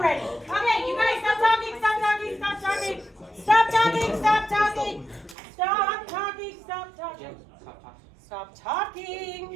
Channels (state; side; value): drops out; left; at 5.4 s